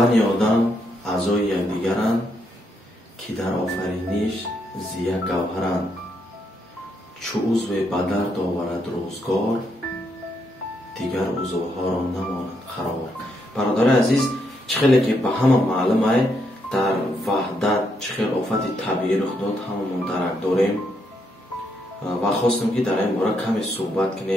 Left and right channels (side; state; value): both; normal; correlation 0.77